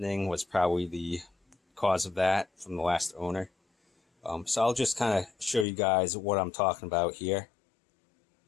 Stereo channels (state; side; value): drops out; right; at 5.7 s